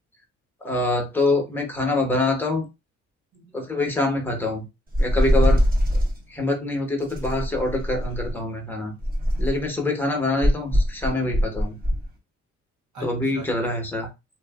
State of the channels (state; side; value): normal; both; correlation 0.71